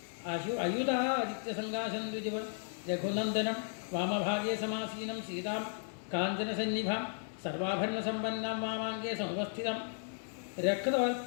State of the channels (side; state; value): right; silent; digital silence